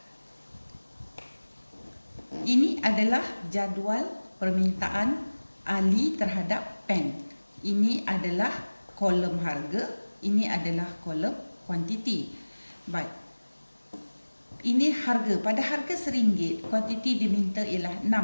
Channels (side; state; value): both; inverted; correlation -1.00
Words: Ini adalah jadual permintaan Ali terhadap pen. Ini adalah kolom harga, ini adalah kolom kuantiti. Baik. Ini harga. Pada harga RM1, kuantiti diminta ialah 6.